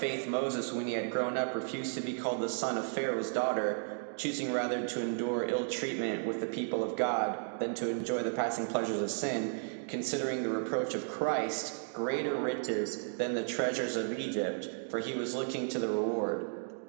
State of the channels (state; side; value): silent; left; digital silence